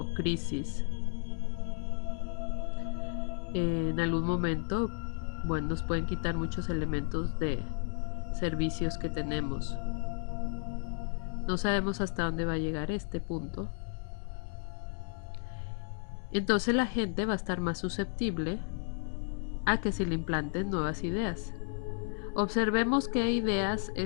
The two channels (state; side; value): silent; right; 56 dB below the other